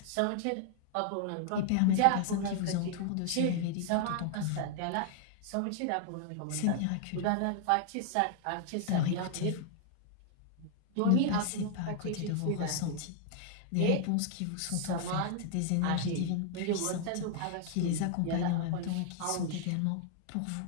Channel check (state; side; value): different; both; correlation 0.00